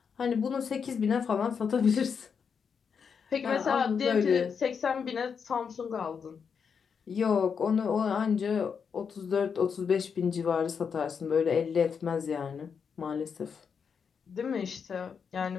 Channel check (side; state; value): right; quieter; 6.4 dB